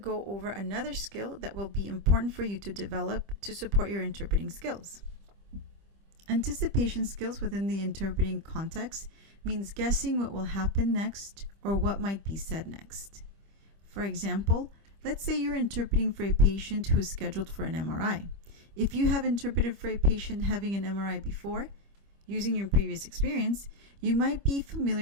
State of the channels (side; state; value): left; late; 25 ms